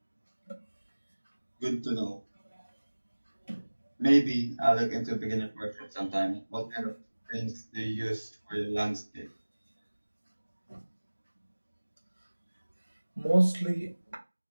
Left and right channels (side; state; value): both; inverted; correlation -1.00